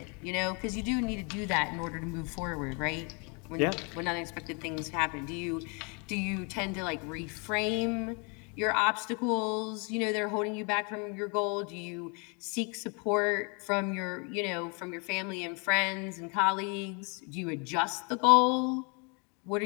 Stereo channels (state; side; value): quieter; right; 34.1 dB